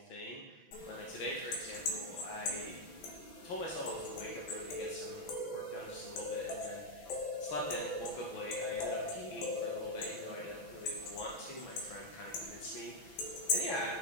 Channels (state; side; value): late; right; 6.0 ms